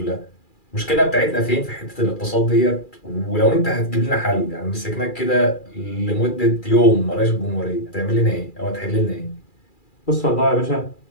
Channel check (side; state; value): right; late; 2.4 ms